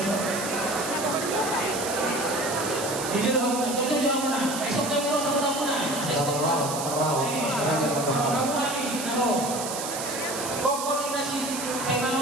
Hindi na ako na. Ito mo na. Isok tayo mo sa tampunan. Sa isok tayo. Raw namin. Ano? Kung na si kay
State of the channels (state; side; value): noise; right; hiss, 6 dB below the sound